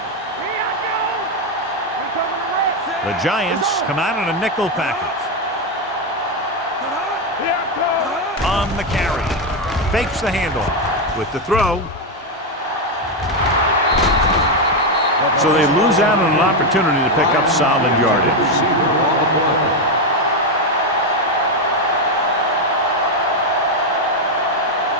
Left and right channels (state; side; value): normal; both; correlation 0.06